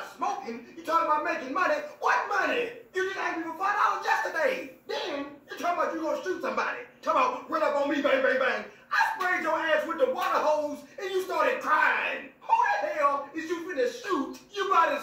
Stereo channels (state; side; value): identical; both; correlation 1.00